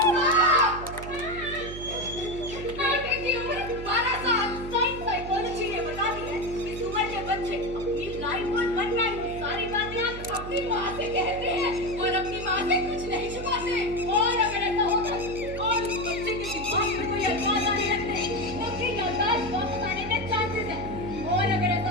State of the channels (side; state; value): right; noise; hum, 10 dB below the sound